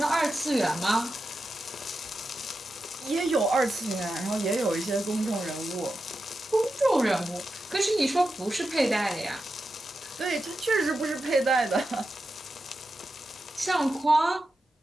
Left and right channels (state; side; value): normal; both; correlation 0.90